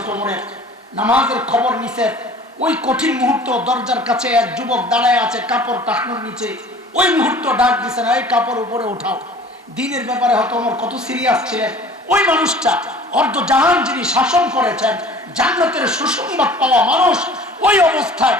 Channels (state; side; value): normal; both; correlation 0.47